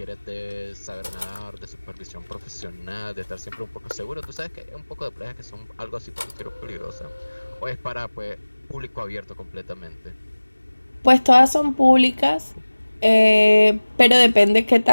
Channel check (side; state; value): both; inverted; correlation -1.00